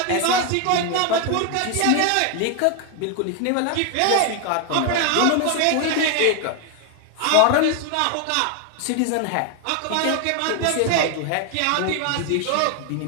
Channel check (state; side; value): different; both; correlation 0.01